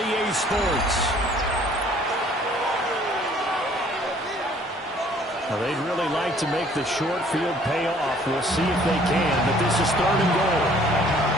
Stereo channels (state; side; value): normal; both; correlation 0.57